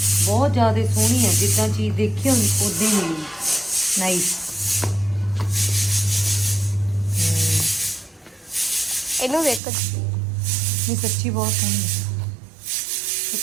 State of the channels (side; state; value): left; drops out; at 9.6 s